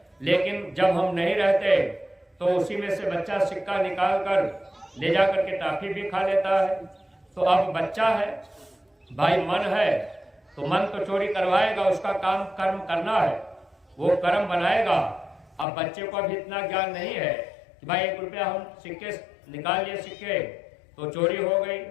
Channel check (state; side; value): drops out; right; at 15.7 s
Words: लेकिन जब हम नहीं रहते तो उसी में से बच्चा सिक्का निकाल कर ले जा करके टॉफी भी खा लेता है। तो अब बच्चा है भाई, मन है तो मन तो चोरी करवाएगा, उसका काम कर्म करना है, वो कर्म बनाएगा। अब बच्चे को अभी इतना ज्ञान नहीं है कि भाई 1 रुपया हम सिक्के निकाल लिए, सिक्के तो चोरी हो गई,